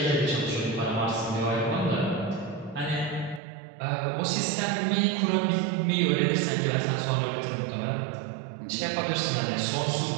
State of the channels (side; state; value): left; drops out; at 3.4 s